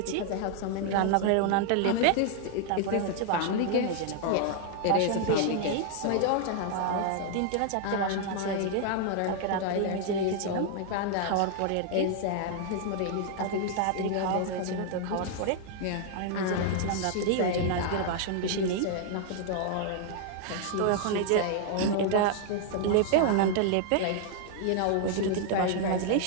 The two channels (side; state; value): both; different; correlation 0.00